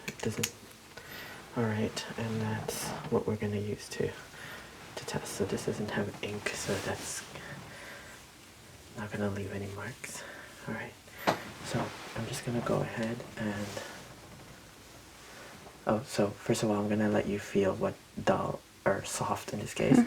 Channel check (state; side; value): identical; both; correlation 1.00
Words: it doesn't... Alright, and that's what we're going to use to test. So this doesn't have ink, so that's not going to leave any marks. Alright, so I'm just going to go ahead and... Oh, so first of all, I'm going to let you feel what dull or soft in this case.